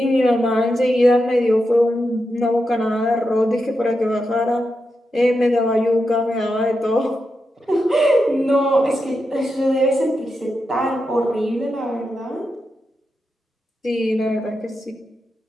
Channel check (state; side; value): normal; both; correlation 0.87